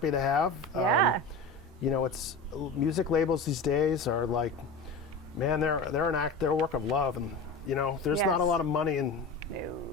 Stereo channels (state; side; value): quieter; right; 3.4 dB